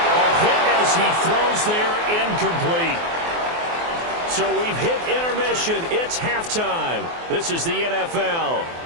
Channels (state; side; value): late; left; 24 ms